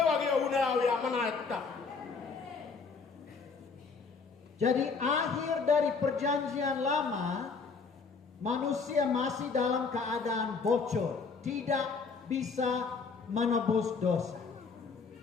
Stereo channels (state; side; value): quieter; right; 4.9 dB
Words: unawi amana kita. Jadi akhir dari perjanjian lama, manusia masih dalam keadaan bocor, tidak bisa menebus dosa.